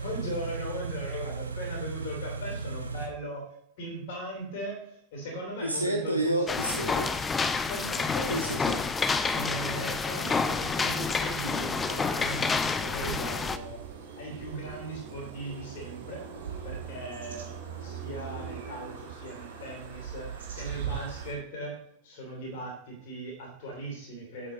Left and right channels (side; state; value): both; normal; correlation 0.27